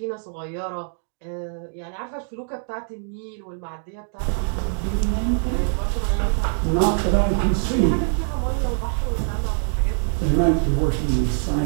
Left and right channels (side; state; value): left; silent; digital silence